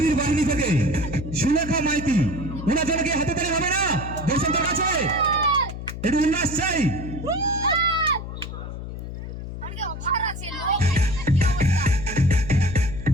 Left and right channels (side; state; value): left; noise; hum, 8 dB below the sound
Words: বাহিনী থেকে সুলেখা মাইতি। ওনার জন্য কি হাতে তালি হবে না দর্শকদের কাছে? একটু উল্লাস চাই।